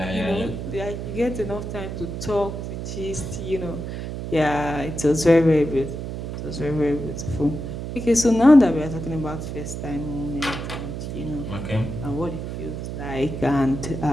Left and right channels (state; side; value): noise; right; hum, 6 dB below the sound